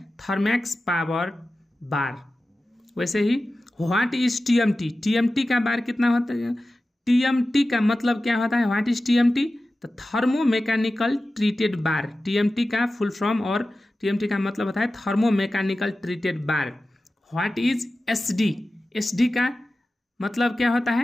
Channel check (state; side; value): normal; both; correlation 0.95